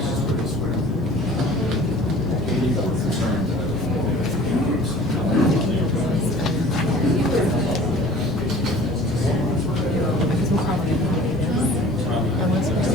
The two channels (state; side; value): normal; both; correlation 0.47